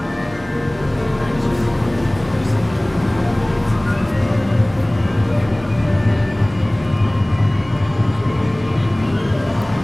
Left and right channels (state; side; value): noise; right; hum, 22 dB below the sound